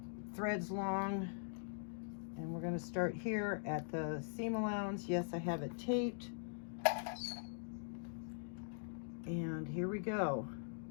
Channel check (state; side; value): silent; right; digital silence